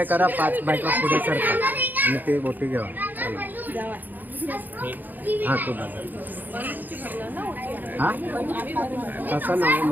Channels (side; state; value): left; late; 0.086 ms